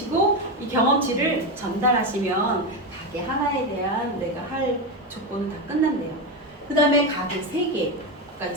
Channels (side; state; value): both; normal; correlation 0.13